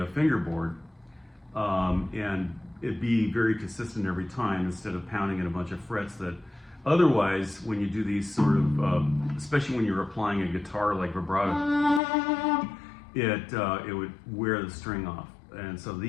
fingerboard, and it'd be very consistent every time instead of pounding in a bunch of frets that otherwise, when you do these sort of, especially when you're applying a guitar like vibrato, it would wear the string off. And so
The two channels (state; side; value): drops out; right; at 12.0 s